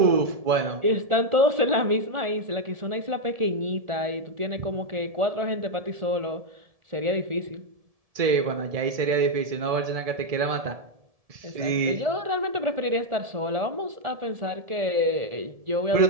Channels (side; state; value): left; late; 1.7 ms